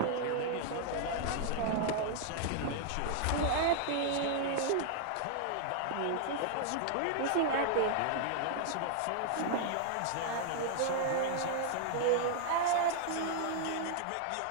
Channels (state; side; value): different; both; correlation 0.00